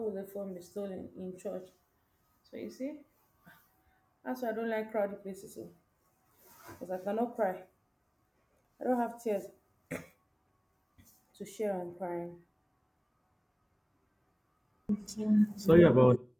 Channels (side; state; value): both; identical; correlation 1.00